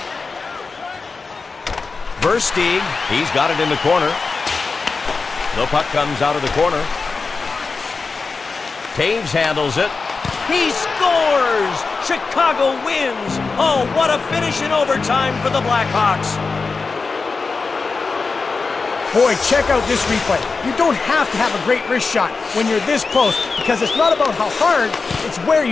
Versteeg, he's got it in the corner. The puck comes out of the corner. Toews handles it. He scores! Chicago wins! Oh, what a finish in overtime for the Blackhawks. Boy, check out this replay. You don't have to have a great wrist shot when you're this close, because it's not about how hard, it's where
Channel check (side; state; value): right; quieter; 4.4 dB